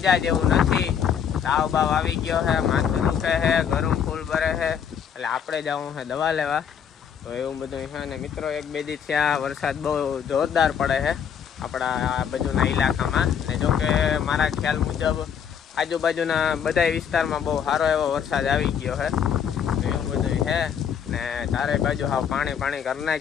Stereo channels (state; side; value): quieter; right; 8.0 dB